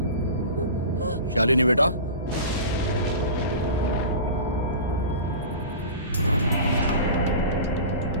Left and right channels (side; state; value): both; inverted; correlation -0.34